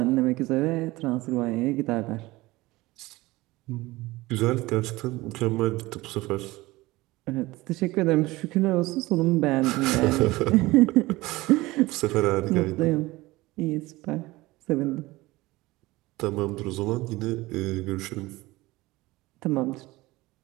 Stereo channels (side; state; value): left; quieter; 19.9 dB